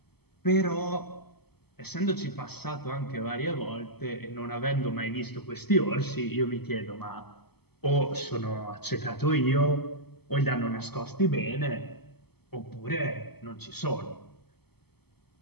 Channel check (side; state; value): right; late; 0.97 ms